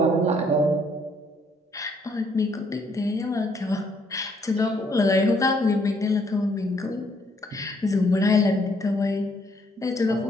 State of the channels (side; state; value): both; normal; correlation 0.68